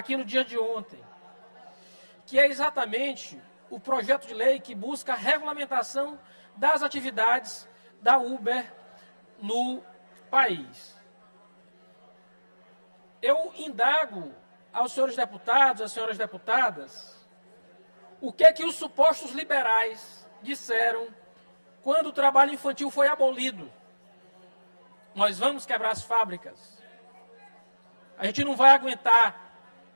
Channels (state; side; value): inverted; both; correlation -1.00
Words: no dia de ontem, que é exatamente o projeto de lei que busca a regulamentação das atividades da Uber no país. Eu indago aos senhores deputados, às senhoras deputadas, o que é que os supostos liberais disseram quando o trabalho infantil foi abolido. Nós vamos quebrar as fábricas. A gente não vai aguentar